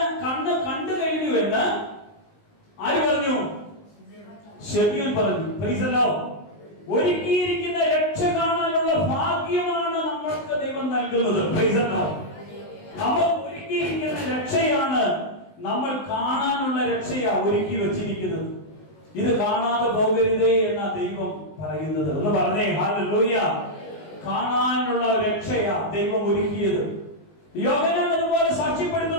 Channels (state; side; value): late; right; 19 ms